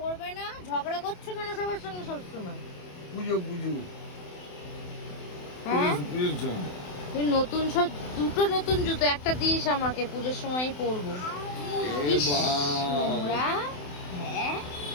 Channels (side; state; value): right; late; 28 ms